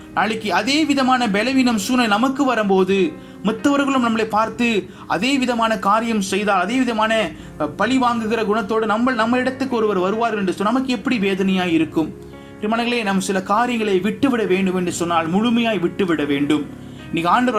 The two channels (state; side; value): identical; both; correlation 1.00